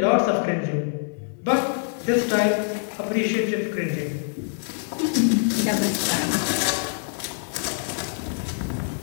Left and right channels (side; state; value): right; silent; 59 dB below the other